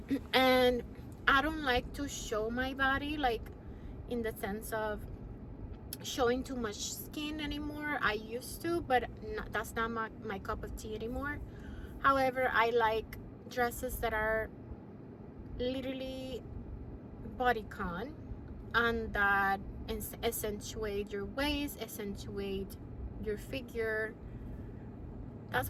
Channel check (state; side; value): identical; both; correlation 1.00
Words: And I don't like to show my body, like in the sense of showing too much skin anymore. I used to, but that's not my cup of tea anymore. However, I like dresses that are literally bodycon, and that accentuate your waist, accentuate your figure. That's